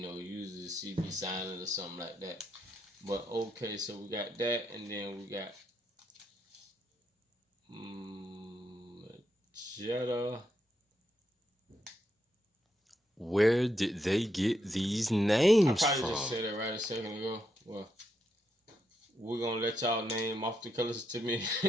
know, usually the C be silent or something like that. But okay, so we got that, and then we got magenta. Where did they get these names I probably from? just said it right a second ago. Well, we're going to let y'all name off the colors to me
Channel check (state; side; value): normal; both; correlation 0.80